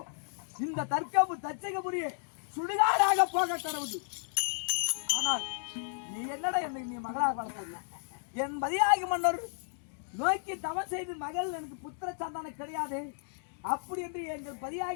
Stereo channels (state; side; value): silent; right; digital silence